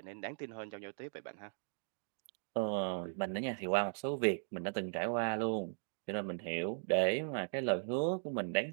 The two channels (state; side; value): silent; left; digital silence